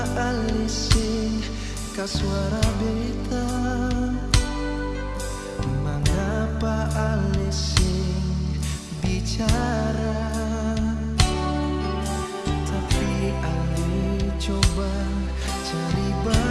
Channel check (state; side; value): identical; both; correlation 1.00